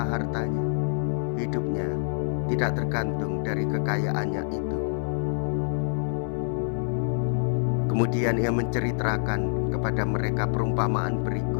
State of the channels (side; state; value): right; silent; 57 dB below the other